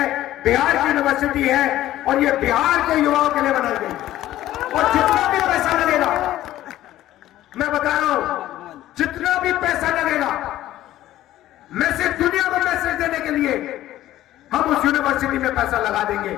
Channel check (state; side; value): quieter; right; 14.1 dB